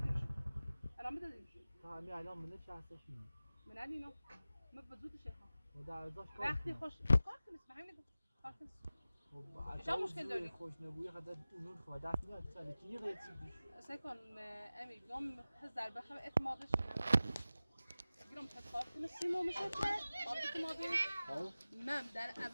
الان بدادیمش همین الان منه شخصش میده من اینو ما بزود شیخا و در ازاش وقتی خوش کار کنیس به همین کار کنیس شما مشکل داری؟ خوش نبوی خدا اونون خدا دست میاد سال کی غیر چی سکن امی گم هزار بخم اعتمادش گیرم تکار کنه سیمو میشه که قابل اعتمادی من در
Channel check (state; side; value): inverted; both; correlation -0.96